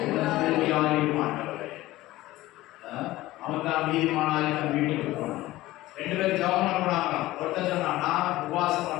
ஆண்டவரே. அவன் தான் நீதிமானாய் தன் வீட்டுக்கு போனான். 2 பேரும் ஜெபம் பண்ணாங்க. ஒருத்தர் சொன்னா நான் உபவாசம்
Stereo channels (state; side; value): quieter; right; 17.2 dB